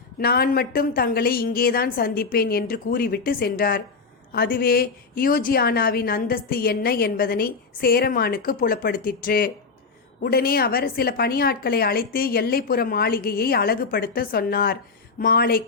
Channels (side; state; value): right; quieter; 4.6 dB